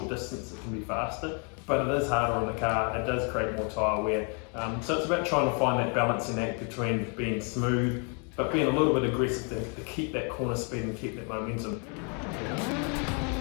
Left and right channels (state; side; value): quieter; right; 37.9 dB